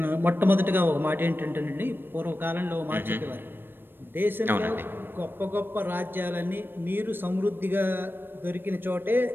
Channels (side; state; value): left; late; 0.098 ms